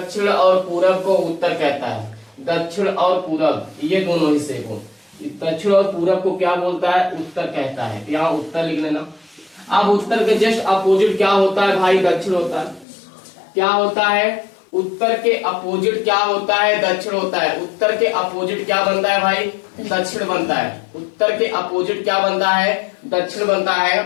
और पूरब को उत्तर कहता है, दक्षिण और पूरब ये दोनों हिस्से को दक्षिण और पूरब को क्या बोलता है, उत्तर कहता है। यहाँ उत्तर लिख लेना। अब उत्तर के जस्ट अपोजिट क्या होता है भाई, दक्षिण होता है। क्या होता है, उत्तर के अपोजिट क्या होता है, दक्षिण होता है। उत्तर के अपोजिट क्या बनता है भाई, दक्षिण बनता है। उत्तर के अपोजिट क्या बनता है, दक्षिण बनता है।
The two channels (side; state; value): right; drops out; at 12.9 s